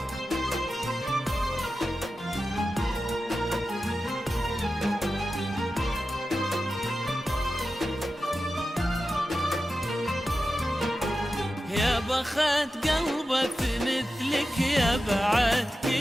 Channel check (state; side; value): normal; both; correlation 0.92